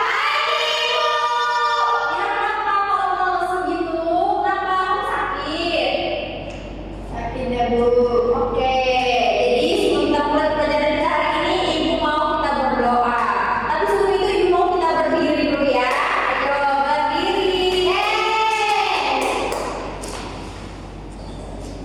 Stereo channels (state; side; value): identical; both; correlation 1.00